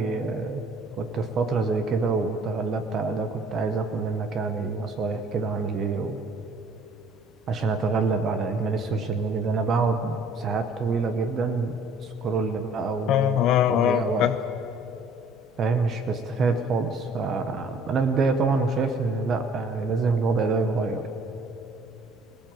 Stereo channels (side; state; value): both; normal; correlation 0.55